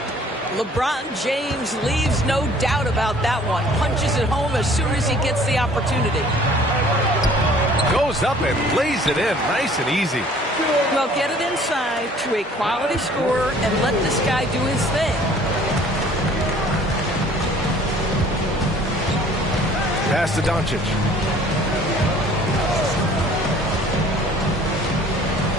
LeBron James leaves no doubt about that one. Punches it home as soon as he gets the opportunity. Goes up and lays it in. Nice and easy. Well, get it inside to a quality scorer and let this guy do his thing. Pass to Doncic.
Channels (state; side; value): normal; both; correlation 0.53